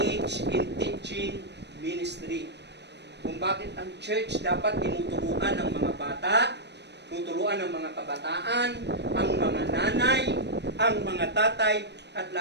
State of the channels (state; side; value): late; left; 0.50 ms